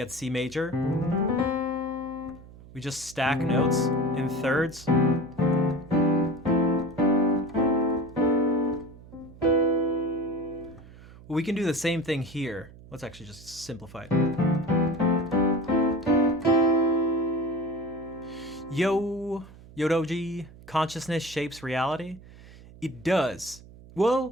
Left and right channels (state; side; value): noise; right; hum, 20 dB below the sound